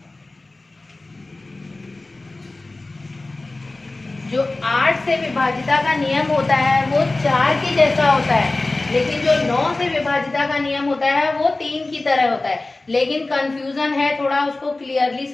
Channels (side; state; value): right; quieter; 3.1 dB